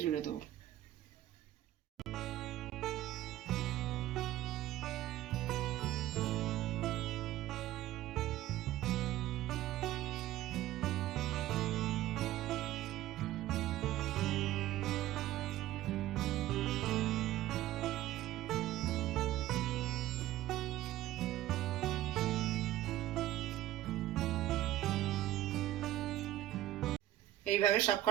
জুড়ে দেবো। এইভাবে সব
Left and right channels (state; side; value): quieter; left; 14.4 dB